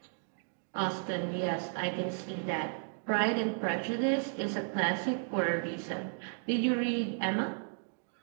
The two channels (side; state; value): left; silent; 55 dB below the other